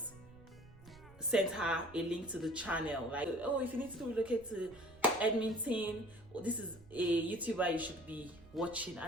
sent her a link to the channel. Like, oh, if you need to relocate to Edmonton, this is a YouTuber you should be watching.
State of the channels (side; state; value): right; noise; rumble, 22 dB below the sound